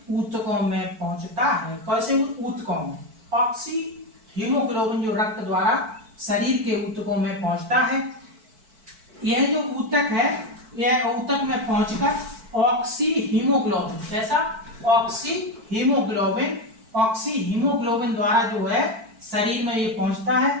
ऊतकों में पहुंचता है। कैसे ऊतकों में? ऑक्सी हीमोग्लोबिन जो रक्त द्वारा शरीर के ऊतकों में पहुंचता है। यह जो ऊतक है, यह ऊतक में पहुंचकर ऑक्सी हीमोग्लोबिन, जैसा ऑक्सी हीमोग्लोबिन द्वारा जो है शरीर में ये पहुंचता है।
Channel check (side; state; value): left; late; 4.5 ms